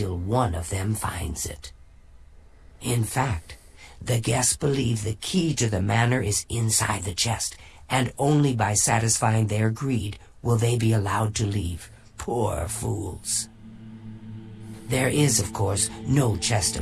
one of them finds it. In fact, the guests believe the key to the manor is inside the chest, and only by satisfying their greed will they be allowed to leave. Poor fools. There is, of course, no chest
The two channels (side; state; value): both; identical; correlation 1.00